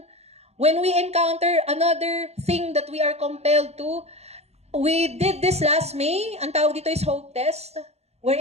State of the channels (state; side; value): late; left; 0.31 ms